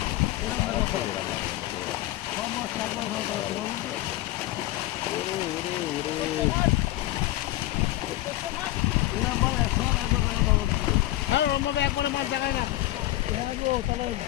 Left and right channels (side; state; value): right; quieter; 16.3 dB